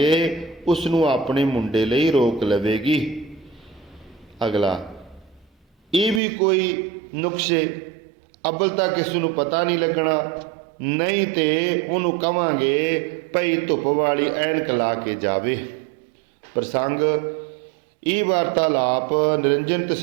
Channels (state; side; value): drops out; left; at 6.2 s